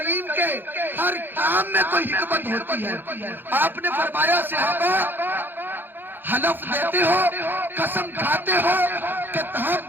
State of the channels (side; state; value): left; late; 0.096 ms